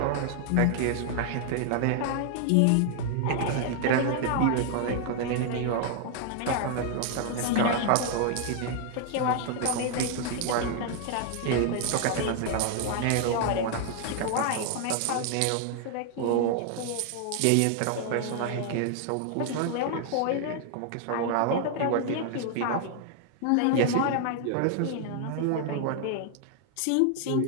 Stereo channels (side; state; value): both; different; correlation 0.00